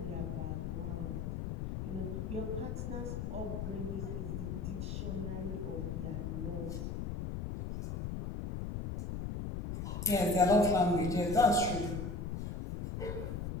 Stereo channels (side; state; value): left; noise; rumble, 4 dB below the sound